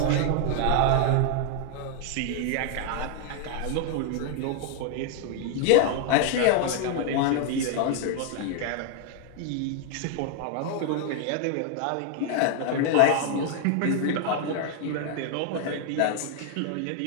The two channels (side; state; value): both; different; correlation 0.00